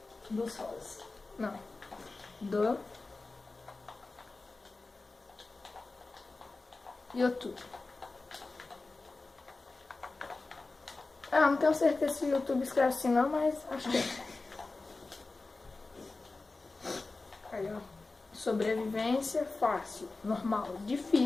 Dos rolos. Não. Do YouTube. Não tenho certeza se o YouTube escreve assim não, mas acho que é. Aí, ó. Sobrevivência fácil, normal,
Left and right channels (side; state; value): right; quieter; 3.5 dB